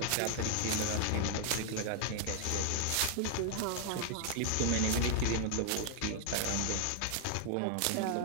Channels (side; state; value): both; different; correlation 0.00